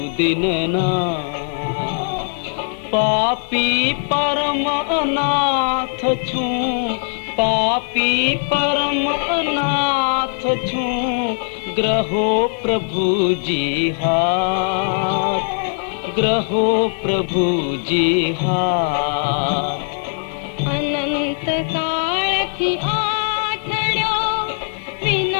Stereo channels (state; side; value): silent; right; digital silence